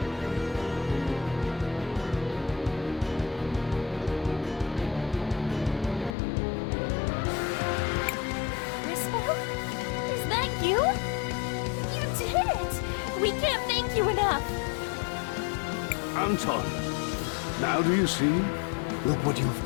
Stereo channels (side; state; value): right; drops out; at 6.2 s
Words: Is that you? You did it! We can't thank you enough! Anton, now do you see? Look what you've